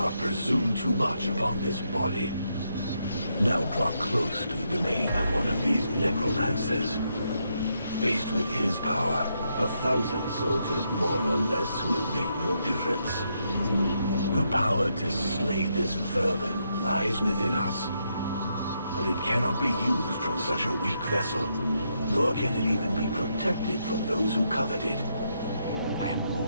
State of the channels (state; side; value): inverted; both; correlation -0.79